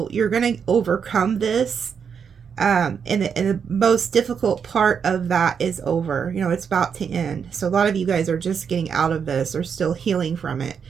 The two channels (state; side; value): quieter; left; 6.8 dB